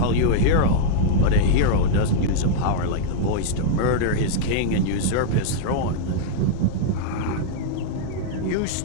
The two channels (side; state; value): both; different; correlation -0.02